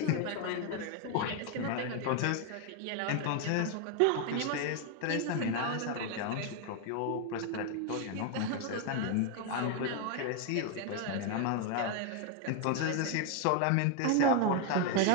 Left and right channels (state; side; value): different; both; correlation 0.00